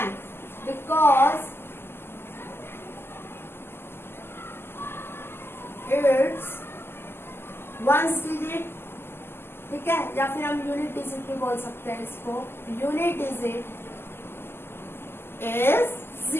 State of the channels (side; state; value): right; late; 0.12 ms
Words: because it's ones digit. ठीक है, या फिर हम यूनिट डिजिट भी बोल सकते हैं इसको। Unit digit is